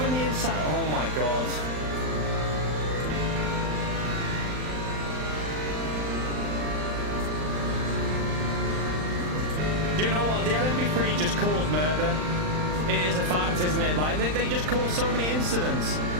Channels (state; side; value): late; left; 39 ms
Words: the inside? Oh my god. Do you know what? The LMP3 just caused murder. It is a fact, isn't it? Like, they just cause so many incidents.